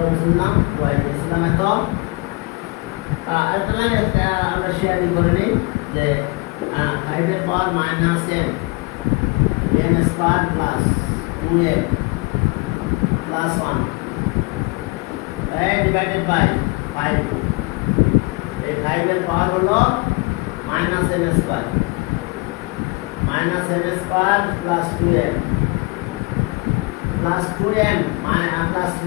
বুঝলাম ওয়াই দিলাম এত একটা লাইন আমরা শেয়ারিং করে নিই যে 5 এর power minus m square plus 2m plus 1 divided by 5 এই 5 এর পাওয়ার হলো minus m square plus 2m plus 2m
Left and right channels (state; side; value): quieter; right; 27.3 dB